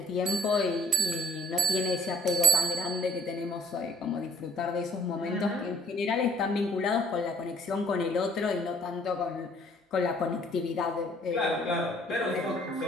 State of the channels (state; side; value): normal; both; correlation 0.57